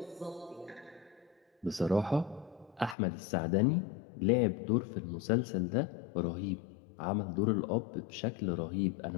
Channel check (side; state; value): right; drops out; at 3.0 s